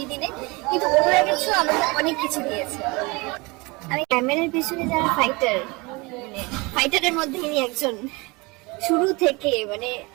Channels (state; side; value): quieter; left; 25.8 dB